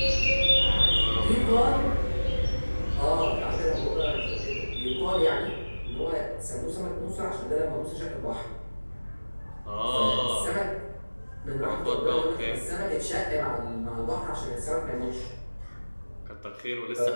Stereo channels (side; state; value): both; inverted; correlation -1.00